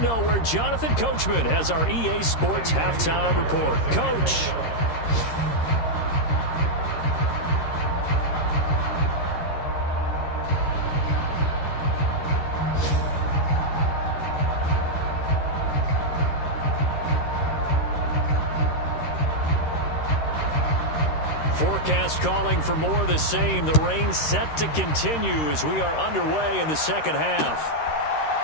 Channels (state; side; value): late; right; 13 ms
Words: where Jonathan Coachman has our EA Sports halftime report. Coach. Forecast calling for more of the same. The rain set to continue as we are underway in the second half.